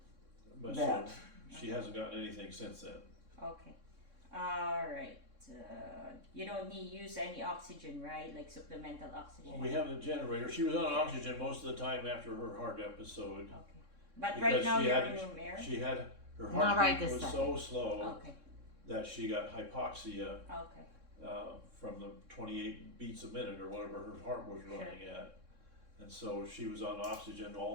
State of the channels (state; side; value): late; left; 3.6 ms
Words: but that. so she hasn't gotten anything since then. Okay. All right. You don't need use any oxygen, right? Like supplemental oxygen. Well, we have the generator. She was on oxygen most of the time after her heart episode. Okay. But Because right now she you're had- in room air. She had her Not right heartbeat this was so slow Okay. that she got hypoxia Okay. from the 28 beats a minute or whatever her heart was running at. And so she was on oxygen